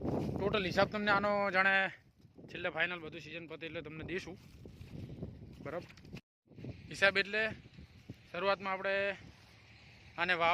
ટોટલ હિસાબ તમને આનો જાણે છેલ્લે ફાઇનલ બધું સિઝન પતે એટલે તમને દઈશું. બરાબર. હિસાબ એટલે શરૂઆતમાં આપણે આને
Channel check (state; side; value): identical; both; correlation 1.00